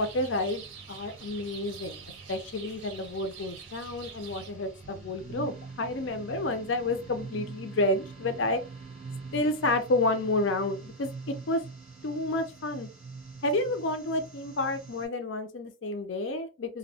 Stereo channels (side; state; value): both; normal; correlation -0.04